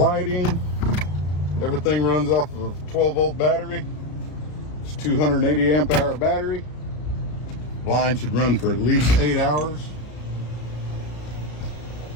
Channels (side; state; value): right; late; 33 ms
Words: Everything runs off of a 12-volt battery. It's 280 amp hour battery. Blind should run for at least 8 hours.